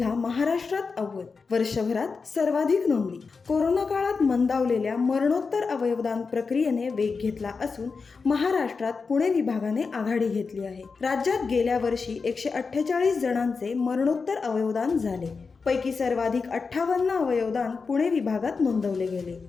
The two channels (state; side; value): quieter; right; 4.8 dB